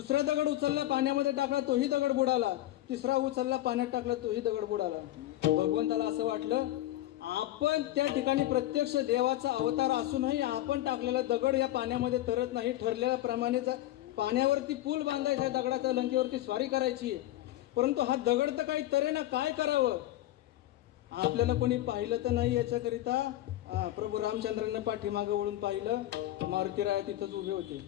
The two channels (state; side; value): quieter; right; 15.0 dB